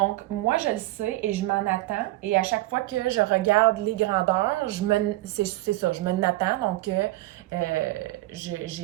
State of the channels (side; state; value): left; quieter; 18.1 dB